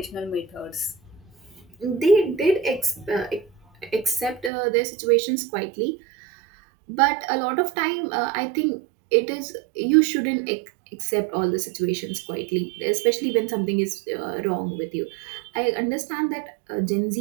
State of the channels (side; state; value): left; drops out; at 4.5 s